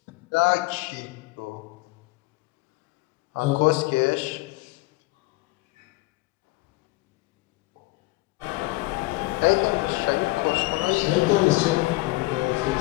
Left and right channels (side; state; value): right; quieter; 21.5 dB